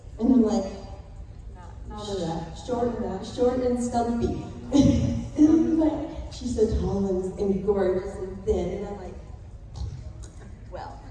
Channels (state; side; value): identical; both; correlation 1.00